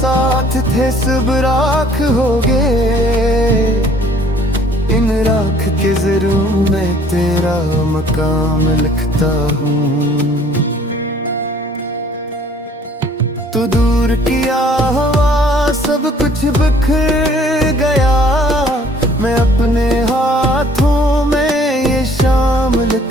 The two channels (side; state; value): both; normal; correlation 0.57